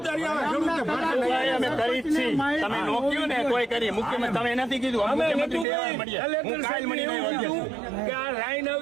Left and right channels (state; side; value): drops out; left; at 5.7 s